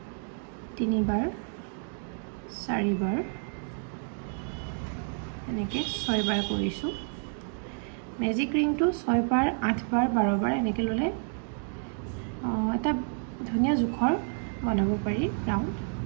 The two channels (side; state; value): left; silent; 55 dB below the other